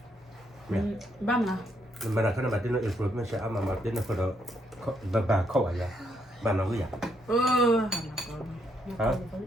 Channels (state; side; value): normal; both; correlation 0.75